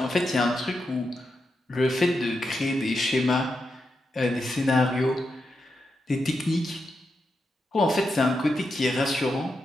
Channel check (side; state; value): both; normal; correlation 0.86